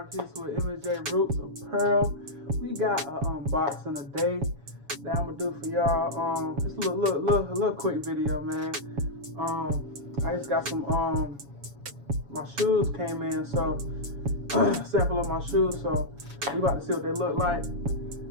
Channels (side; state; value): left; late; 7.1 ms